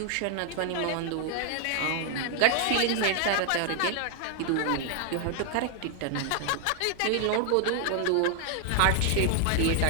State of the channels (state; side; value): different; both; correlation 0.00